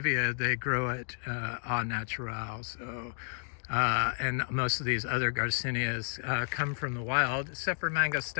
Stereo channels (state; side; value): silent; right; digital silence